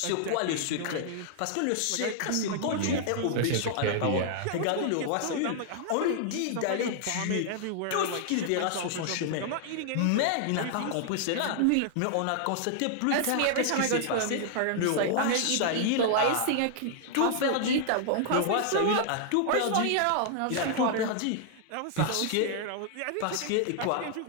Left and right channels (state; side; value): different; both; correlation 0.00